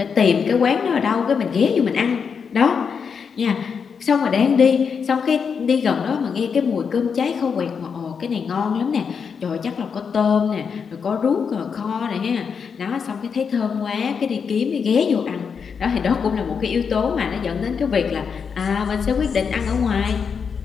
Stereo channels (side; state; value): right; quieter; 6.3 dB